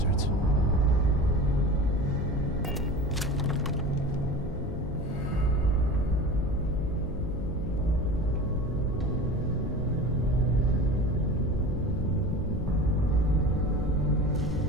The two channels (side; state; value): left; noise; hum, 9 dB below the sound